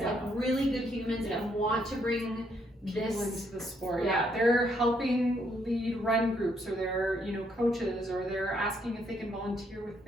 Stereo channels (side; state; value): both; normal; correlation 0.73